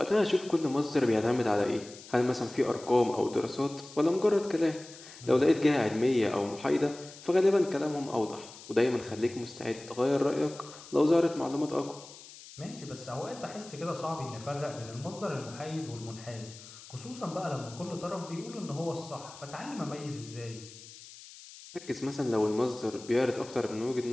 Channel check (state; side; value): noise; left; hiss, 17 dB below the sound